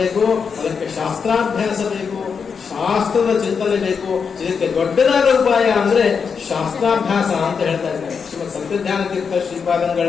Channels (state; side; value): quieter; right; 6.0 dB